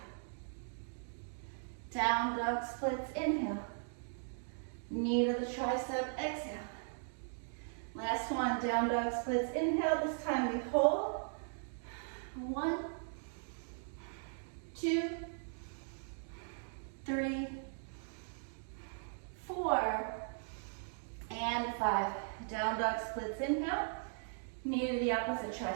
Down dog splits, inhale. Knee to the tricep, exhale. Last one, down dog splits, inhale. This time we hold. 1, 2, 3, 4, and 5. Down dog splits, inhale. Knee to the opposite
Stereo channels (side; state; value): left; silent; digital silence